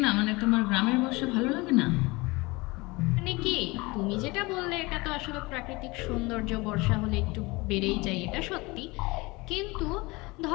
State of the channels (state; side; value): quieter; right; 23.9 dB